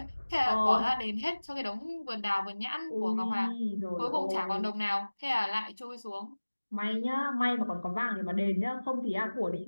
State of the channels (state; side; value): inverted; both; correlation -1.00